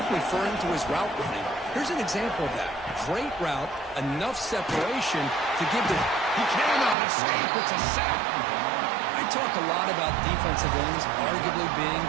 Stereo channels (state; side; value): drops out; left; at 7.0 s